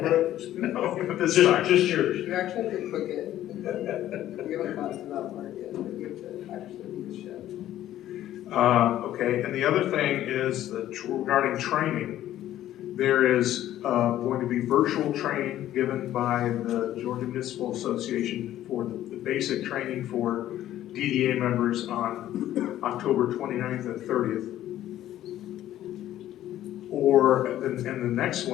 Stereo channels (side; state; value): right; quieter; 12.9 dB